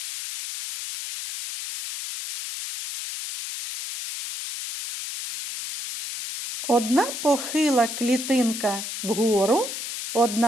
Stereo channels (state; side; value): noise; left; hiss, 7 dB below the sound